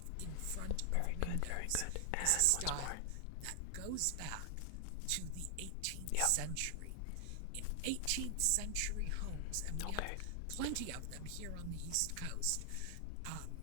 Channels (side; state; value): both; different; correlation 0.00